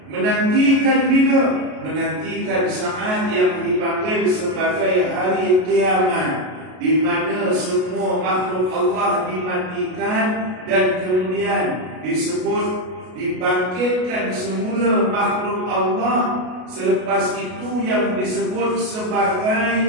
menantikan bila? Menantikan saat yang dipanggil sebagai hari kiamat, di mana semua makhluk Allah dimatikan dan kemudian disebut dibangkitkan semula makhluk Allah. Selepas itu yang disebut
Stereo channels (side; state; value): left; late; 33 ms